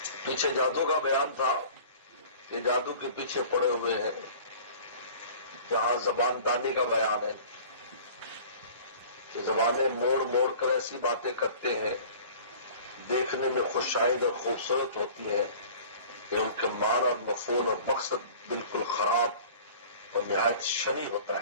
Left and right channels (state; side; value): inverted; both; correlation -0.45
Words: پیچھے جادو کا بیان تھا کہ جادو کے پیچھے پڑے ہوئے ہیں. جہاں زبان دانی کا بیان ہے کہ زبانیں موڑ موڑ کر ایسی باتیں کرتے ہیں دیکھنے میں خوشائند اور خوبصورت ہوتی ہیں کہ ان کے معنی اور مفہوم اور مقصد بالکل خراب اور نہایت شنی ہوتا